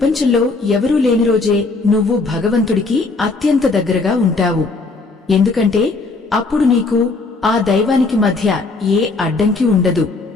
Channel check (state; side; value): quieter; right; 3.7 dB